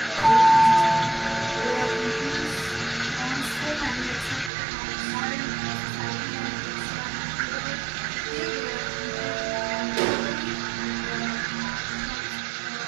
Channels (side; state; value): left; drops out; at 4.5 s